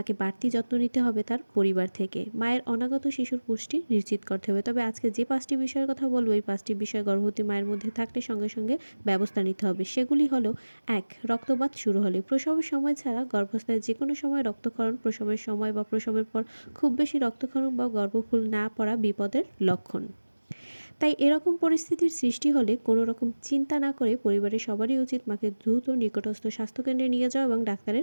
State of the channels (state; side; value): inverted; both; correlation -1.00